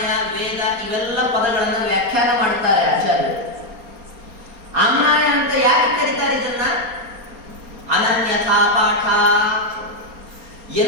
ವೇದ ಇವೆಲ್ಲ ಪದಗಳನ್ನು ವ್ಯಾಖ್ಯಾನ ಮಾಡ್ತಾರೆ ಆಚಾರ್ಯರು. ಆಮ್ನಾಯ ಅಂತ ಯಾಕೆ ಕರೀತಾರೆ ಇದನ್ನ? ಅನನ್ಯಥಾ ಪಾಠ,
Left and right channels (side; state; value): left; late; 4.3 ms